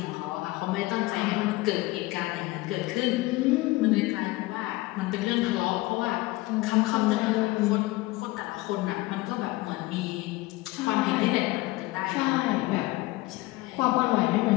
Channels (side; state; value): right; quieter; 20.4 dB